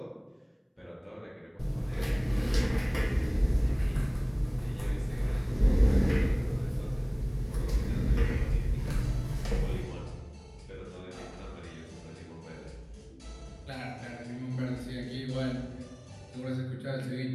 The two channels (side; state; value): both; identical; correlation 1.00